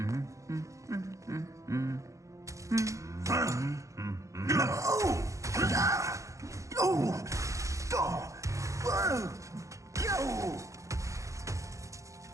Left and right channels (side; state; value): left; late; 0.15 ms